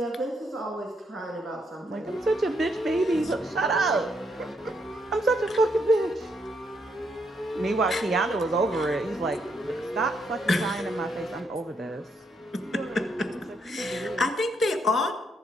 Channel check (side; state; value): both; normal; correlation 0.76